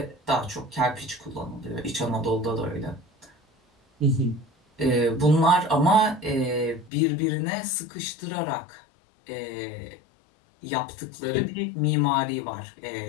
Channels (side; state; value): right; drops out; at 6.9 s